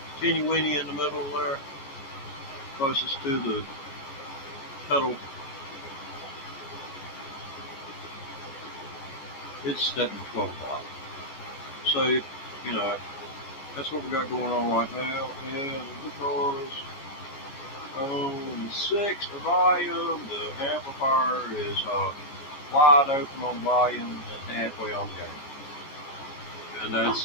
teeny weeny in the middle there, closest to the pedal. It's set at 12 o'clock. So, you know, that's what we got going on right now. And the guitars on 6, the volume, the amplifier is wide open on volume and halfway on gain. And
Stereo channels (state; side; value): late; right; 13 ms